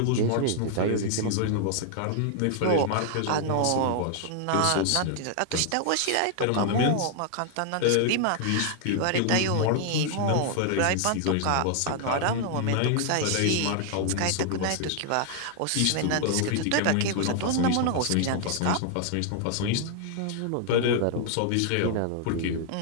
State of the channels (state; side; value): different; both; correlation 0.00